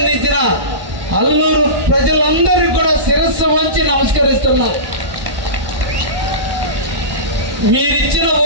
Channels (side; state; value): left; late; 1.1 ms